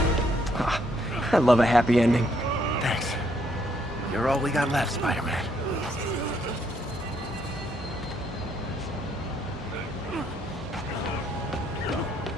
Ah, I love a happy ending. Thanks. You're all we got left, Spider-Man.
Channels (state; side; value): normal; both; correlation 0.71